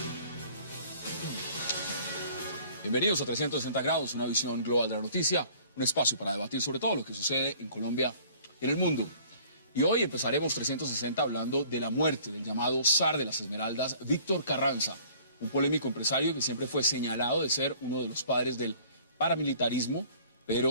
Bienvenidos a 360 grados, una visión global de la noticia, un espacio para debatir sobre todo lo que sucede en Colombia y en el mundo. Y hoy empezaremos 360 hablando de la muerte del llamado zar de las Esmeraldas, Víctor Carranza, un polémico empresario que siempre fue señalado de ser uno de los padres del paramilitarismo,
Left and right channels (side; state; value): both; inverted; correlation -0.53